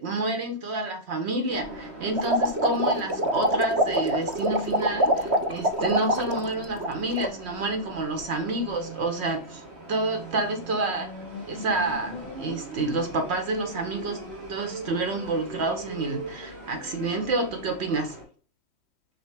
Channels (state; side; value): late; left; 3.1 ms